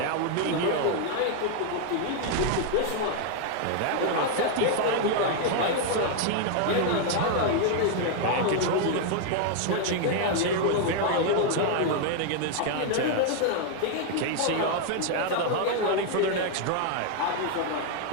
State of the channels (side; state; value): both; different; correlation 0.00